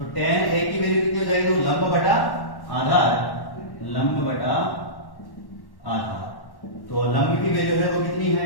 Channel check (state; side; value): late; right; 1.1 ms